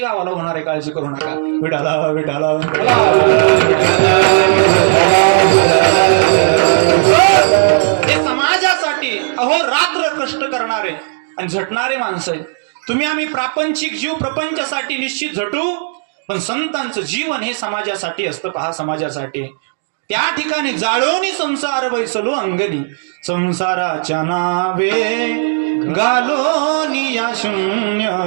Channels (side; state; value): left; silent; digital silence